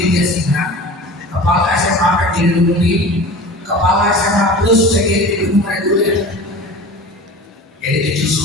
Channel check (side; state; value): both; normal; correlation 0.37